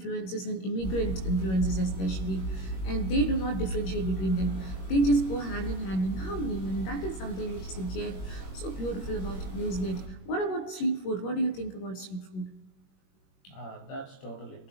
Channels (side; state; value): right; late; 21 ms